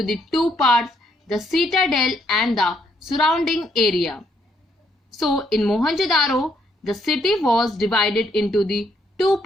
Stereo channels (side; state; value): both; normal; correlation 0.72